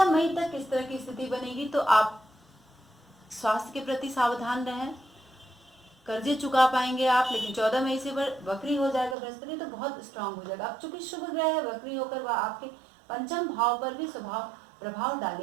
मई तक इस तरह की स्थिति बनेगी, तो आप स्वास्थ्य के प्रति सावधान रहें। कर्जे चुका पाएंगे आप, लेकिन 14 मई से वक्री हो जाएगा बृहस्पति, तो बहुत स्ट्रांग हो जाएगा। अब चूंकि शुभ ग्रह है, वक्री होकर वह आपके पंचम भाव पर भी प्रभाव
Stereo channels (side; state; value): left; drops out; at 9.2 s